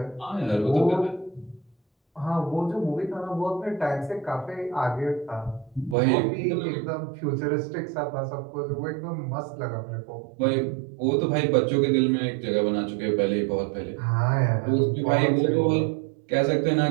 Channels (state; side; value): drops out; left; at 6.0 s